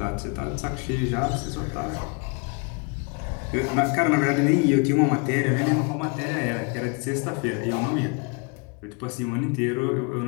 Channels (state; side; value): quieter; right; 32.4 dB